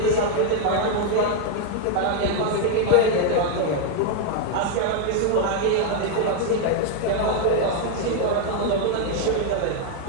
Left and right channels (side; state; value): both; different; correlation 0.01